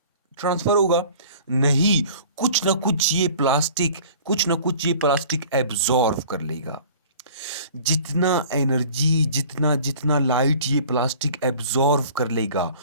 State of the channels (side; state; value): both; inverted; correlation -0.47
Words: ट्रांसफर होगा? नहीं, कुछ ना कुछ ये प्लास्टिक एब्जॉर्व कर लेगा। जितना एनर्जी, जितना जितना लाइट ये प्लास्टिक एब्जॉर्व कर लेगा,